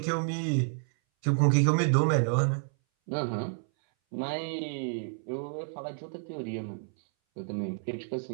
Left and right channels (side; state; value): left; silent; 58 dB below the other